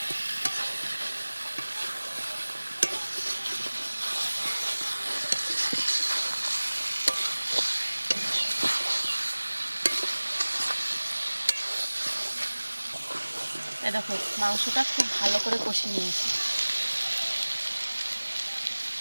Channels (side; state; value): both; inverted; correlation -1.00